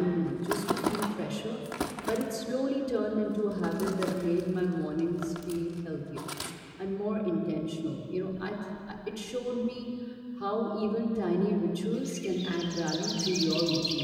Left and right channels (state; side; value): identical; both; correlation 1.00